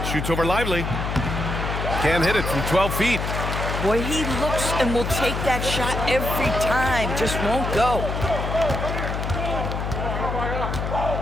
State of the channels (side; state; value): left; noise; hum, 3 dB below the sound